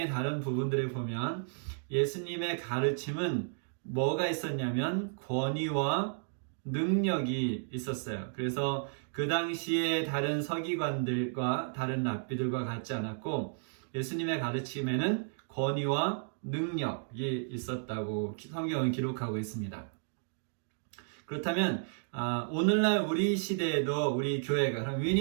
다른 부분들을 보면 예수님의 가르침은 뭐가 있었냐면 권위와 능력이 있었어요. 그래서 그 당시에 다른 서기관들과 다른 랍비들과 같지 않았고 예수님의 가르침에는 권위와 능력이 있었다고 성경은 기록하고 있습니다. 그렇다면 오늘날 우리 시대에도 우리 교회가, 그럼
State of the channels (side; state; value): left; silent; digital silence